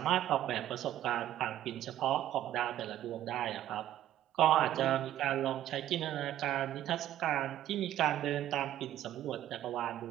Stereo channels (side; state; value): left; quieter; 12.5 dB